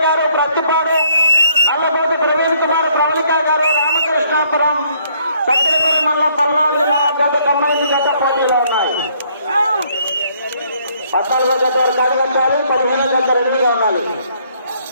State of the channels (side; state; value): both; inverted; correlation -0.66